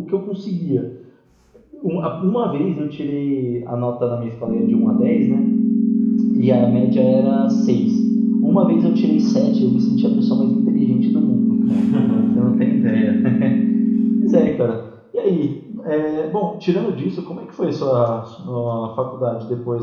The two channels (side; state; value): both; identical; correlation 1.00